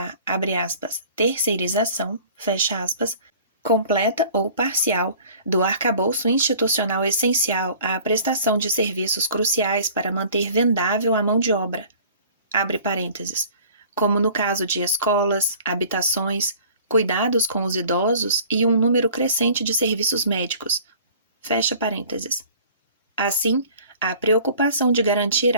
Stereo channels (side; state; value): both; inverted; correlation -0.48